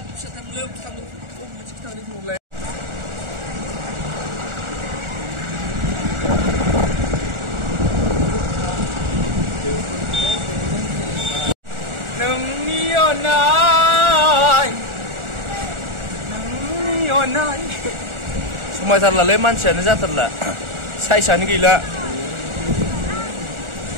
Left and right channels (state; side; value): late; left; 1.4 ms